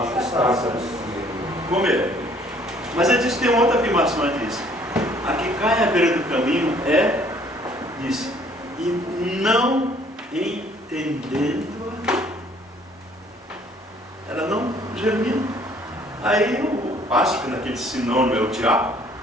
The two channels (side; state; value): both; normal; correlation 0.59